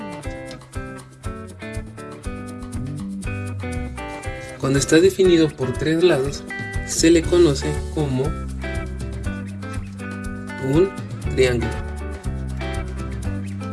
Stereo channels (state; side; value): identical; both; correlation 1.00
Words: se le conoce como un triángulo.